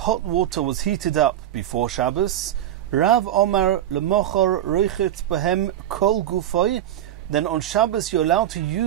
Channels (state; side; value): quieter; left; 11.7 dB